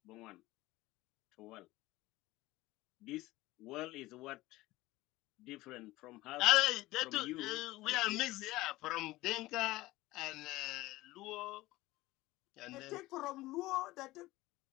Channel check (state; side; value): quieter; right; 18.7 dB